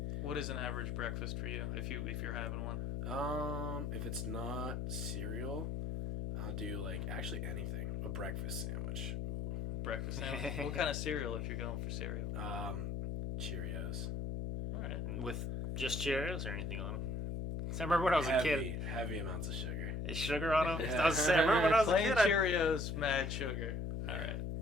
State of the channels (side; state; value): left; noise; hum, 2 dB below the sound